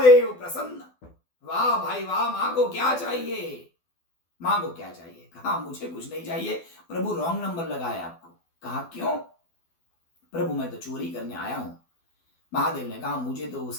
प्रसन्न। वाह भाई वाह, माँ को क्या चाहिए, माँ को क्या चाहिए? कहा मुझे कुछ नहीं चाहिए। प्रभु रॉन्ग नंबर लगाया आपको। कहा क्यों? प्रभु मैं तो चोरी करने आया हूं। महादेव ने कहा मुझे तो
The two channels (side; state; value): right; late; 12 ms